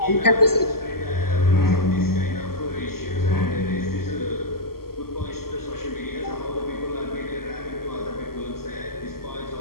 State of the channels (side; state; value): right; late; 0.94 ms